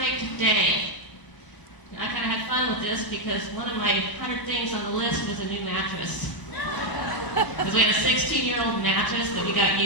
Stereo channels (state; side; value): late; right; 1.0 ms